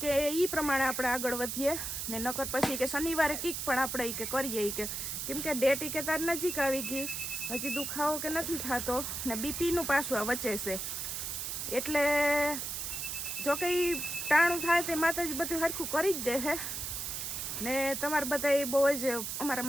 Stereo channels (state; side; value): noise; right; hiss, 4 dB below the sound